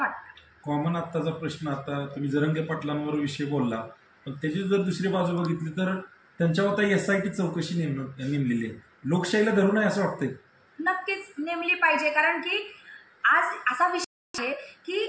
कॉमन आत्ताचा प्रश्न, आता तुम्ही जरंगे पाटलांवर विषय बोलला, पण त्याची जर दुसरी बाजू बघितली तर त्यांच्यावर आता SIT चौकशी नेमलेली आहे. लोकशाहीला धरून आहे असं वाटतंय? नक्कीच नेमली पाहिजे. कारण की आज असा विषय आहे की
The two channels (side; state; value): both; identical; correlation 1.00